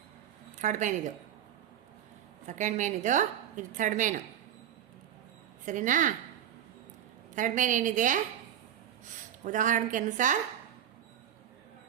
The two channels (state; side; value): quieter; left; 10.3 dB